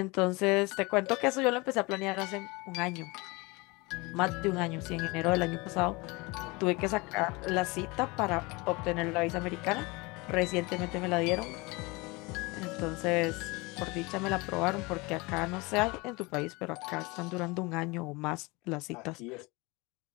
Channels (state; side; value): quieter; right; 25.3 dB